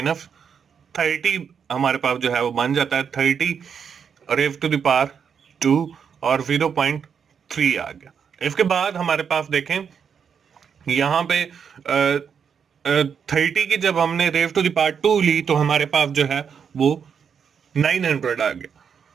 हमारे पास जो है वो बन जाता है 30 रेज टू द पावर 2 और 0.3 आ गया। इसके बाद हमारे पास देखें यहाँ पे 30 की जब हमने रेज टू द पावर 2 ली तो हमारे पास जो है वो 900 आ गया,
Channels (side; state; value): left; quieter; 7.0 dB